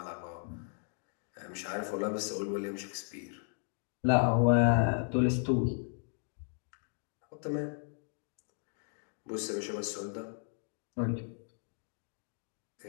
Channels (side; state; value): right; silent; 54 dB below the other